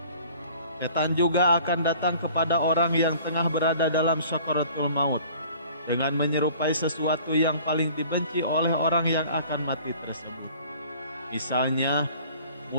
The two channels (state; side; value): inverted; both; correlation -0.50